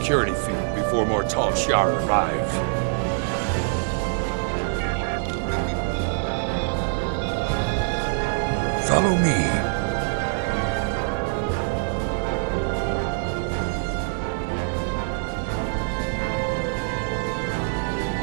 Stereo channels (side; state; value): left; silent; digital silence